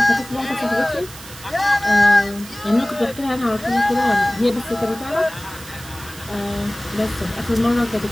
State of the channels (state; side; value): noise; right; hiss, 16 dB below the sound